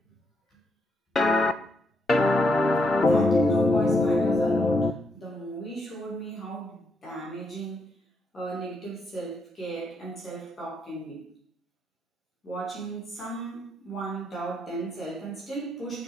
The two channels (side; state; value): both; normal; correlation 0.78